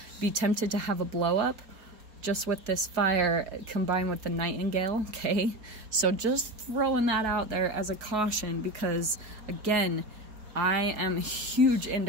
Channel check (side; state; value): left; late; 4.2 ms